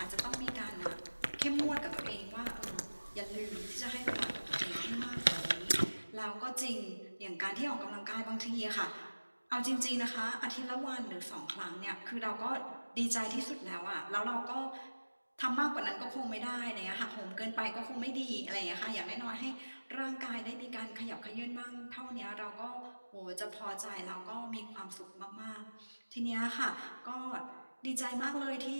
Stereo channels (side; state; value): both; inverted; correlation -1.00